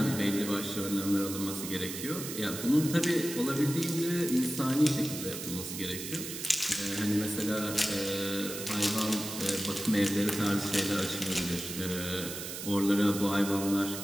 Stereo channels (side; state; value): right; noise; hiss, 7 dB below the sound